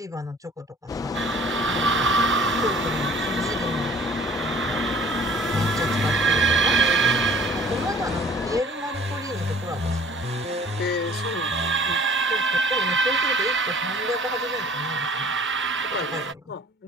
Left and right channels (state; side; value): normal; both; correlation 0.52